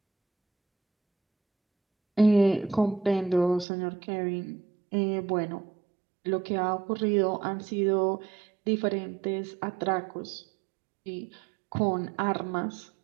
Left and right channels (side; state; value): left; drops out; at 3.7 s